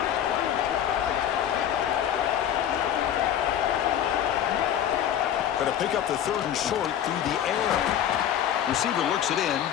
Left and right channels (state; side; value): quieter; right; 10.1 dB